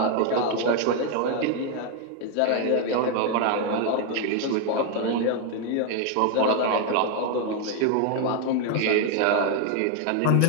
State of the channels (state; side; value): different; both; correlation 0.01